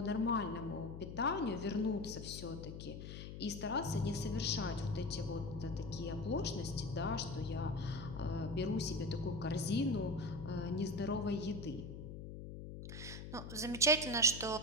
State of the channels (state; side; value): noise; left; hum, 9 dB below the sound